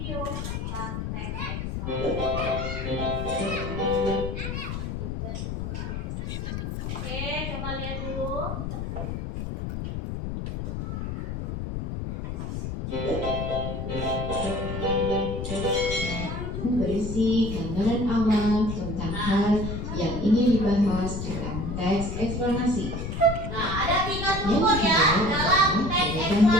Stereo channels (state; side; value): noise; left; rumble, 4 dB below the sound